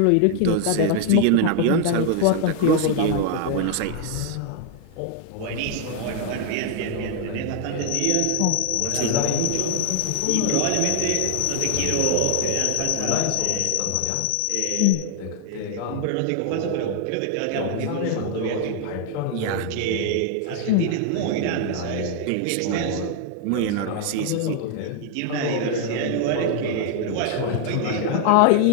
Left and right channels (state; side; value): different; both; correlation 0.00